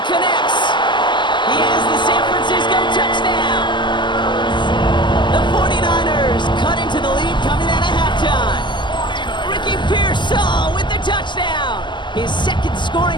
connects. He has the San Francisco touchdown. The 49ers cut into the lead coming out of halftime. Ricky Pearsall with the touchdown. His 2nd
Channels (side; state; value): right; late; 0.22 ms